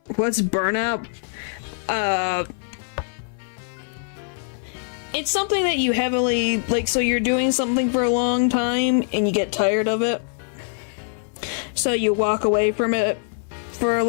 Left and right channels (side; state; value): right; silent; 58 dB below the other